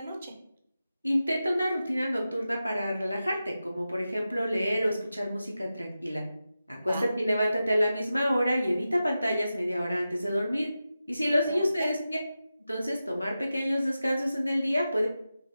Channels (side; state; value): both; inverted; correlation -0.92